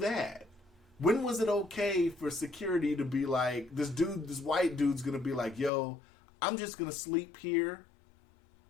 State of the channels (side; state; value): right; drops out; at 5.7 s